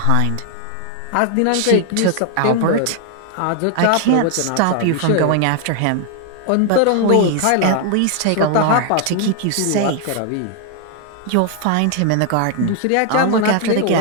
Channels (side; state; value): both; different; correlation 0.00